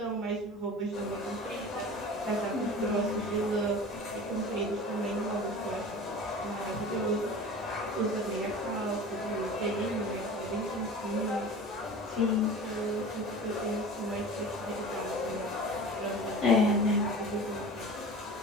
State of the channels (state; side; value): normal; both; correlation 0.37